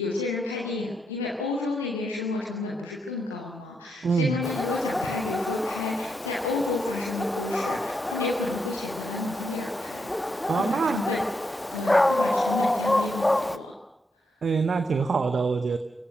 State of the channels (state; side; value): normal; both; correlation 0.80